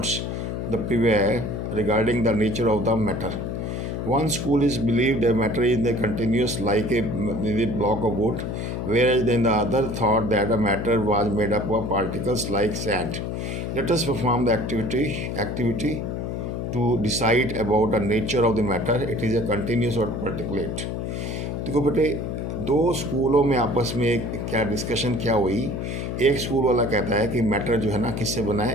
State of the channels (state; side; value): noise; left; hum, 4 dB below the sound